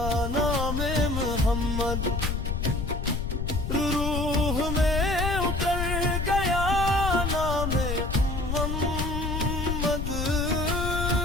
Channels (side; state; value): left; noise; rumble, 2 dB below the sound